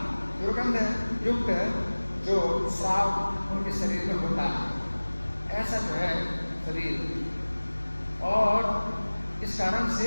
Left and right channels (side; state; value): both; inverted; correlation -1.00